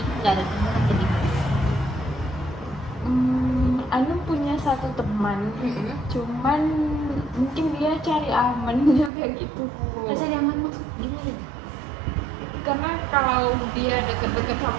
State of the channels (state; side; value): drops out; left; at 9.1 s